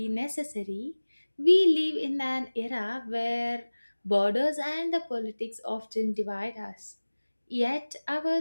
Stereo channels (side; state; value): both; inverted; correlation -1.00